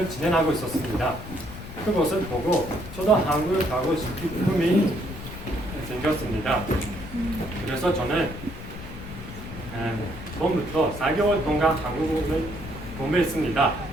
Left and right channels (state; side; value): noise; left; rumble, 12 dB below the sound